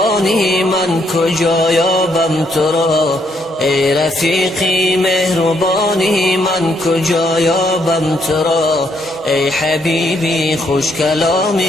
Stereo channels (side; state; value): both; normal; correlation 0.73